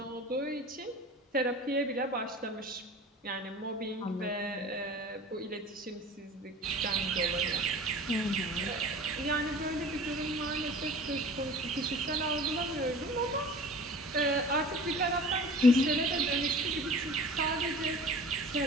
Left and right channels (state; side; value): normal; both; correlation 0.41